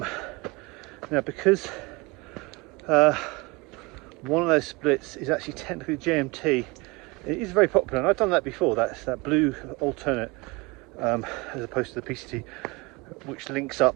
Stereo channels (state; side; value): quieter; left; 25.3 dB